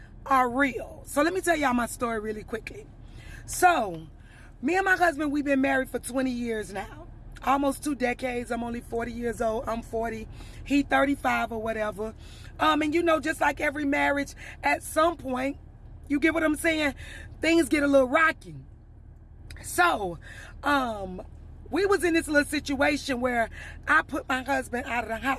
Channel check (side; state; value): both; identical; correlation 1.00